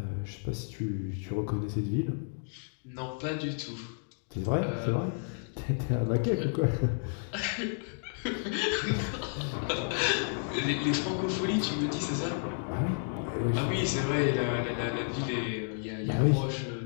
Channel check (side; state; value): right; silent; digital silence